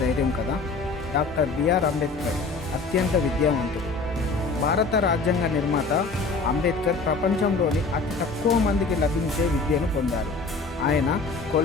ధైర్యం కదా. డాక్టర్ బిఆర్ అంబేద్కర్ అత్యంత విద్యావంతుడు. భారత రాజ్యాంగ నిర్మాత అంబేద్కర్ ప్రపంచంలోని అతి తక్కువ మందికి లభించే విద్యను పొందారు. ఆయన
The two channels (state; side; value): quieter; right; 4.0 dB